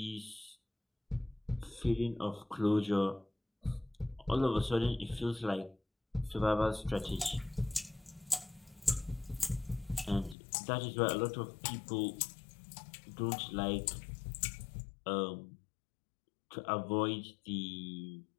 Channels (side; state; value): right; drops out; at 10.4 s